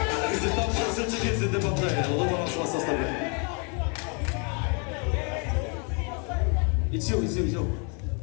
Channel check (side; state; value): right; quieter; 36.7 dB